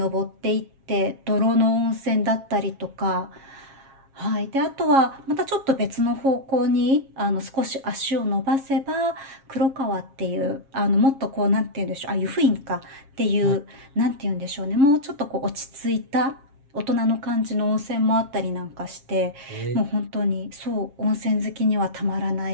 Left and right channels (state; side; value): late; left; 7.4 ms